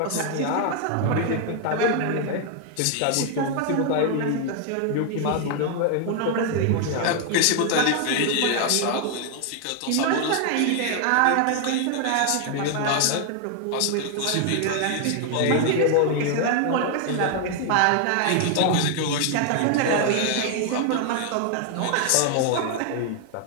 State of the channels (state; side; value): different; both; correlation 0.00